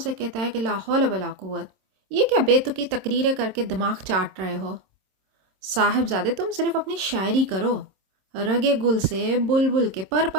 کہتا ہے کہ لا حول ولا قوت، یہ کیا بے تکی تقریریں کر کے دماغ چاٹ رہے ہو؟ صاحبزادے تم صرف اپنی شاعری کرو، رگے گل سے بلبل کے پر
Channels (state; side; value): late; left; 26 ms